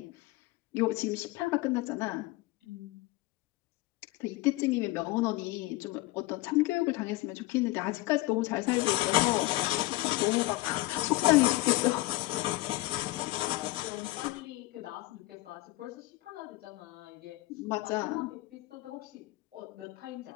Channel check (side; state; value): right; quieter; 19.7 dB